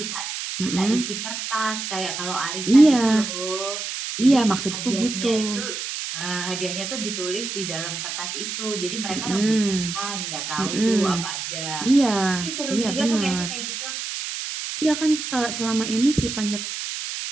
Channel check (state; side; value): noise; right; hiss, 5 dB below the sound